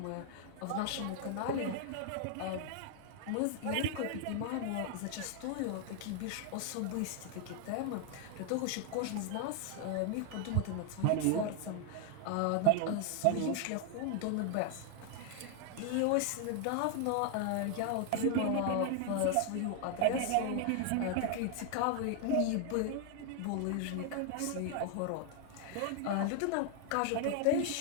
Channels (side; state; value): both; different; correlation 0.00